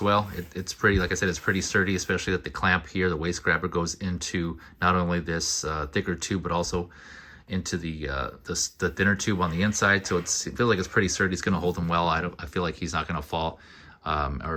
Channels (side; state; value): both; identical; correlation 1.00